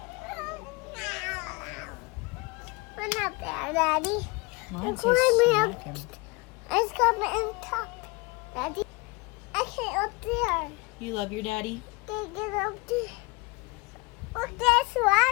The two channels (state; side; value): quieter; right; 26.4 dB